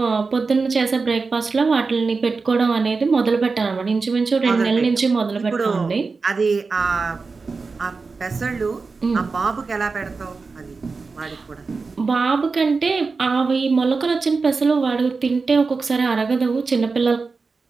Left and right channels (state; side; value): quieter; left; 4.3 dB